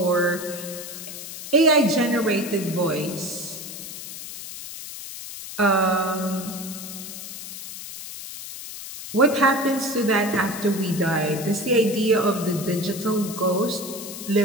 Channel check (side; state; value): left; noise; hiss, 10 dB below the sound